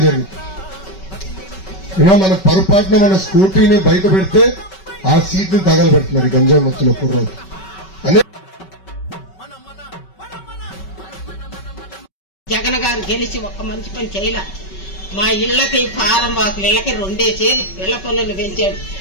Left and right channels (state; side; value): late; right; 5.3 ms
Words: జరిగింది. ఏమో మన పొరపాటున మన స్కూటీని బయట పెడితే ఆ సీట్ ని తగలబెడుతున్నారు ఈ గంజాయి ముత్తులో కుర్రోజు అనే. జగన్ గారు గెలిచి ఒక్క మంచి పని చేయలే. మా ఇళ్లకి ఫారం వాకులు ఇళ్లకి 2 ఇళ్ల పన్నులు పెంచాడు,